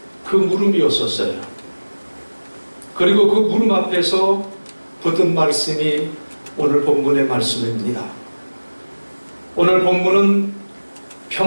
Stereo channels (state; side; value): inverted; both; correlation -1.00